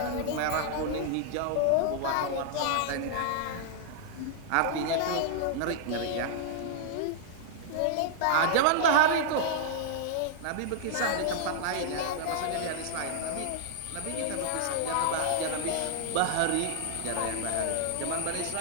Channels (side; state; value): both; different; correlation -0.01